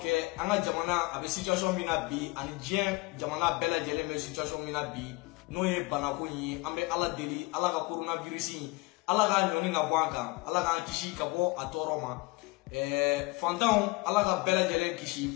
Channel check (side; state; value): right; quieter; 24.0 dB